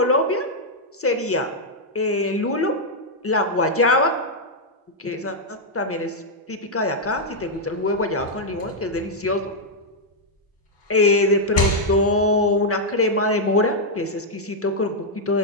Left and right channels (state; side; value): normal; both; correlation -0.03